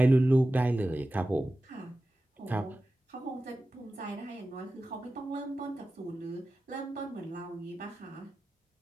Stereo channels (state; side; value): normal; both; correlation 0.94